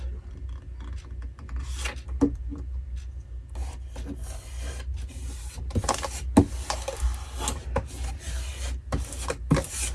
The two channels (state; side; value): identical; both; correlation 1.00